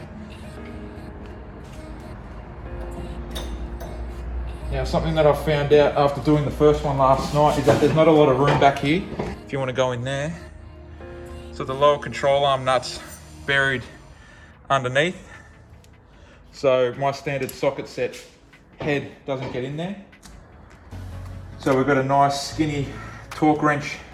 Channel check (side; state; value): both; identical; correlation 1.00